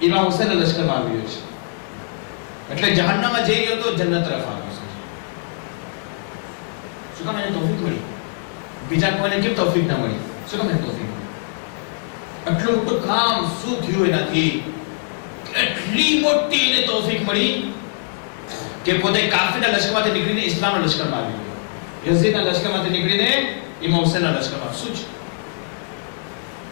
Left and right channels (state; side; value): silent; right; 64 dB below the other